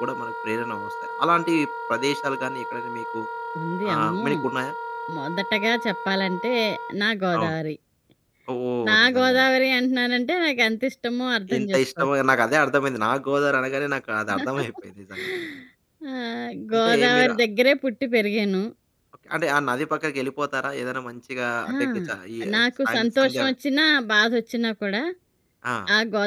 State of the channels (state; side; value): identical; both; correlation 1.00